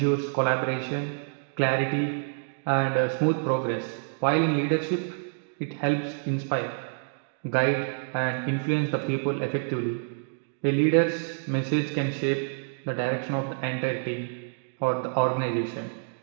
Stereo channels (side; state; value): left; silent; digital silence